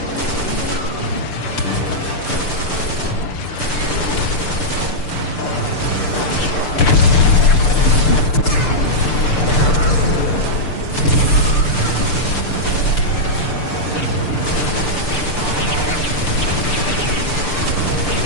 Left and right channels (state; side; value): late; right; 6.8 ms